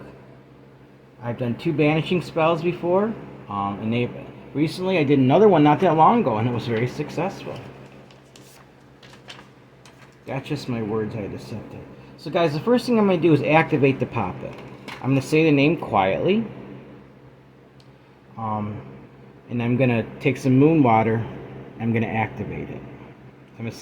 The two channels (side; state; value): both; identical; correlation 1.00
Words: I've done 2 banishing spells before, and recently I did another one not that long ago, and it was very successful. That's just my words I just said there. So guys, the first thing I'm going to do is activate the poppet. I'm going to say the name quietly. And I'm going to take some moon water. I'm going to activate it. I'm going to